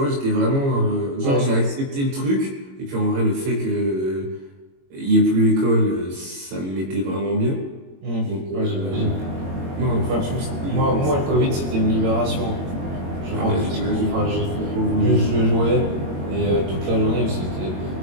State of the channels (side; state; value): left; late; 22 ms